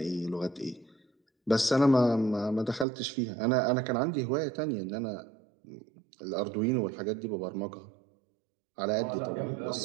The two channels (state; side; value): drops out; left; at 2.9 s